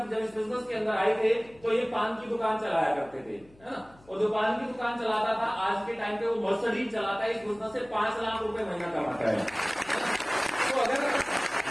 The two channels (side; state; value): left; noise; hum, 27 dB below the sound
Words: जब इस बिजनेस के अंदर आए थे, तो ये पान की दुकान चलाया करते थे, है ना, और जो पान की दुकान चलाता था, आज के टाइम पे वो मर्सिडीज चलाता है। इस बिजनेस से 5 लाख रुपए महीना कमाता है। तो अगर